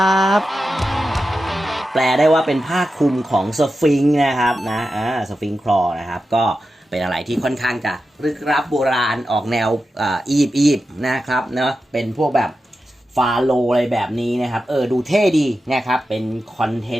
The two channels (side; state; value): both; normal; correlation 0.91